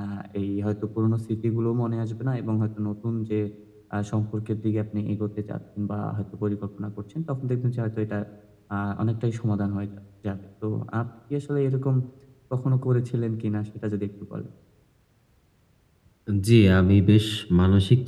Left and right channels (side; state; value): both; identical; correlation 1.00